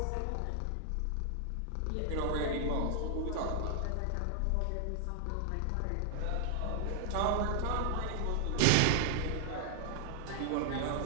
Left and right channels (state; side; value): different; both; correlation 0.00